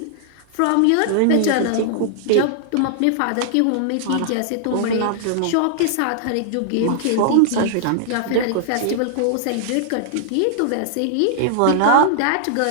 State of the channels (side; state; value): both; different; correlation -0.01